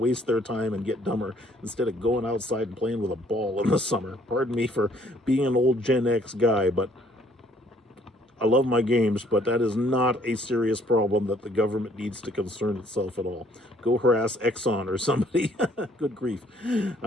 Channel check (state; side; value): normal; both; correlation 0.62